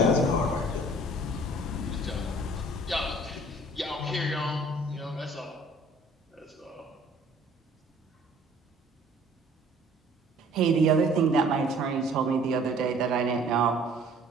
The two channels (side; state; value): both; normal; correlation 0.53